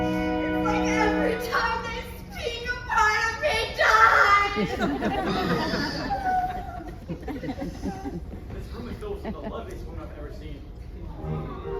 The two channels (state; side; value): identical; both; correlation 1.00